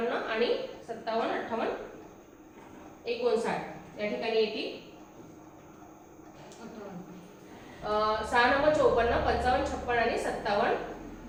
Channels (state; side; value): identical; both; correlation 1.00